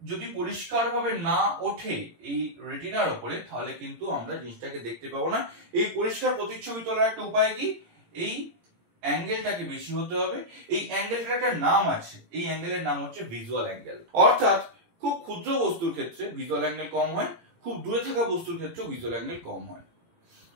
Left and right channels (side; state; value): left; late; 17 ms